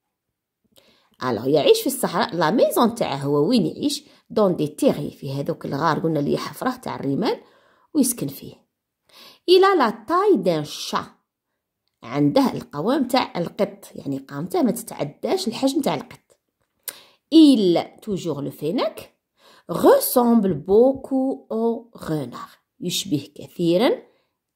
alors يعيش في الصحراء. لا ميزون تاعه هو وين يعيش؟ دون دي تيغي، في هذوك الغار قلنا اللي حفره تاع الرمال ويسكن فيه. الى لا تاي دان شا، عنده القوام تاع القط، يعني قامته ما تتعداش الحجم تاع القط. il toujours le fennec ressemble beaucoup au renard، يشبه كثيرا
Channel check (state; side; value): identical; both; correlation 1.00